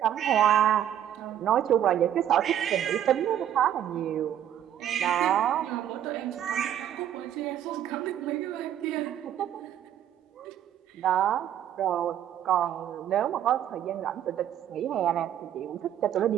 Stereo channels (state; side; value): quieter; left; 10.7 dB